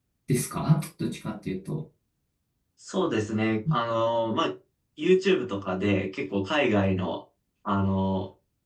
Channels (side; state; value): both; identical; correlation 1.00